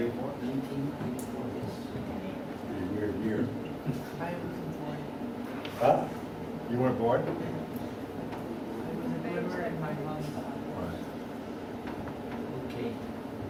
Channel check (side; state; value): both; identical; correlation 1.00